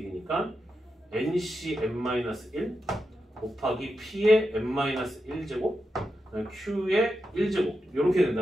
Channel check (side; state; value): both; normal; correlation 0.87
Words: ncn-1 곱하기 p의 n-1제곱 q의 1제곱 이렇게